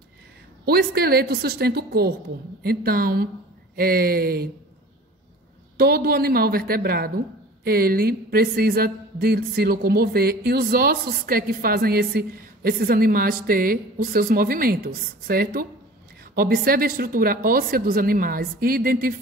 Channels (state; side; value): normal; both; correlation 0.42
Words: O esqueleto sustenta o corpo. Então, todo animal vertebrado, ele precisa de se locomover. E os ossos que fazem esses animais ter os seus movimentos, certo? Observe a estrutura óssea dos animais e